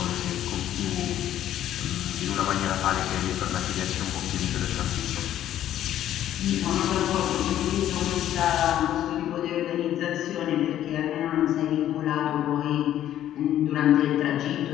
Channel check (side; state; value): right; quieter; 11.9 dB